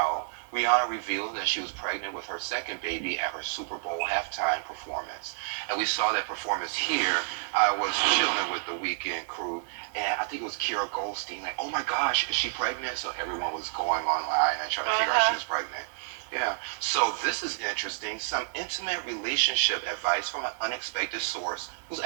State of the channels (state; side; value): silent; left; digital silence